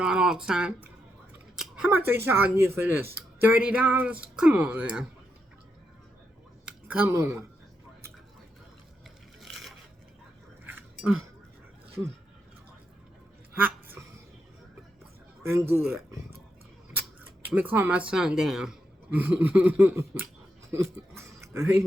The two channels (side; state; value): both; normal; correlation 0.83